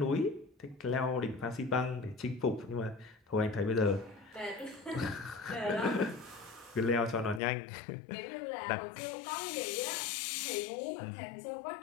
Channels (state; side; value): drops out; right; at 7.4 s